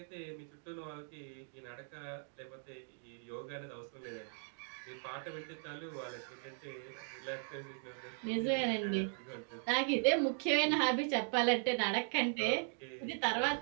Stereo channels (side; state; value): left; silent; 52 dB below the other